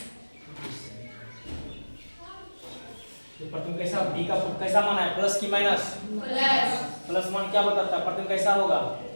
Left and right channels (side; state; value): both; inverted; correlation -1.00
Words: तो प्रतिबिंब कैसा, v का कैसा मान है? प्लस की माइनस? प्लस मान क्या बताता है? प्रतिबिंब कैसा होगा?